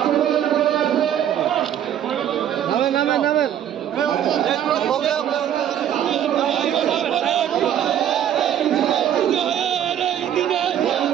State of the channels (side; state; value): left; quieter; 10.3 dB